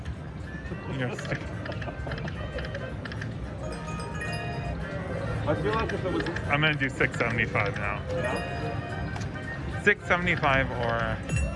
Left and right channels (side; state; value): both; identical; correlation 1.00